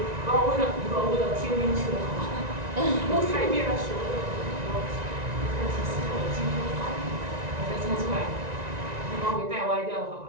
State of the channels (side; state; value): left; late; 1.9 ms